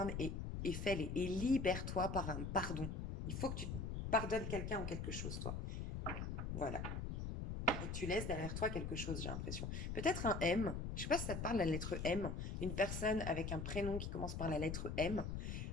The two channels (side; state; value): left; noise; rumble, 3 dB below the sound